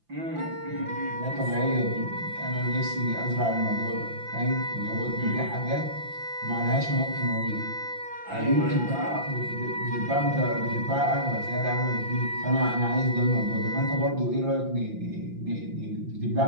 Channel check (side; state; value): left; late; 5.8 ms